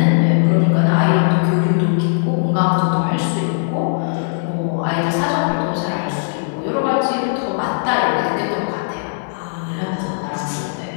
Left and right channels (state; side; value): silent; right; 67 dB below the other